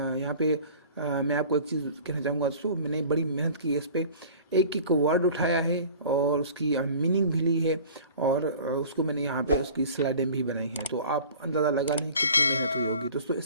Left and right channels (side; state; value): both; inverted; correlation -0.44